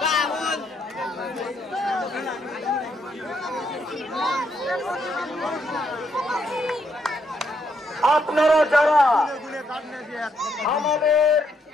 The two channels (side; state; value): both; normal; correlation 0.75